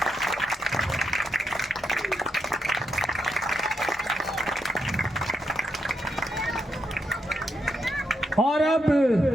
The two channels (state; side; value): normal; both; correlation 0.81